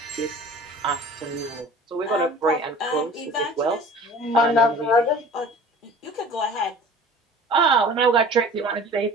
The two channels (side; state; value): both; normal; correlation 0.43